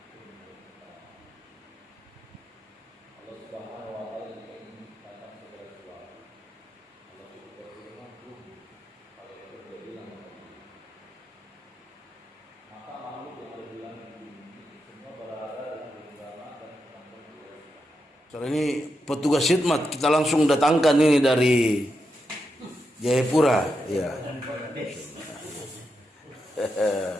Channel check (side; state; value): both; normal; correlation 0.85